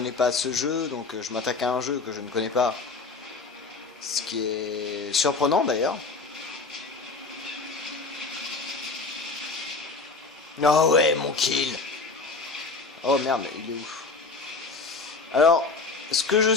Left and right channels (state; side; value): quieter; right; 4.1 dB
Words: pas ce jeu, donc je m'attaque à un jeu que je ne connais pas. Ce qui est surprenant d'ailleurs. Oh ouais, mon kill. Oh merde, il est où? Alors, ce que je